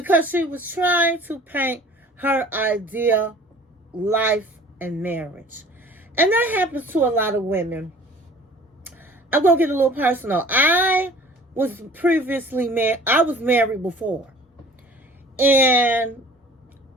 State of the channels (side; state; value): both; normal; correlation 0.48